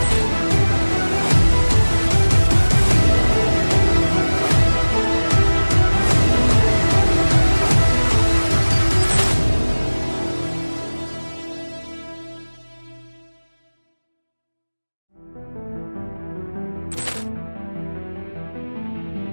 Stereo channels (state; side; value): inverted; both; correlation -1.00